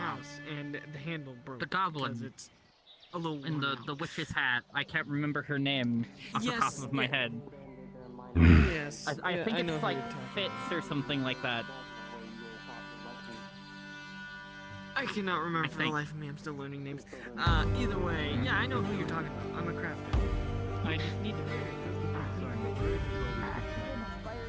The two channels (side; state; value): both; identical; correlation 1.00